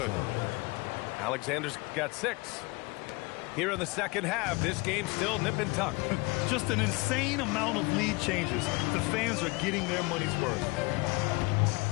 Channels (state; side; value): quieter; right; 25.3 dB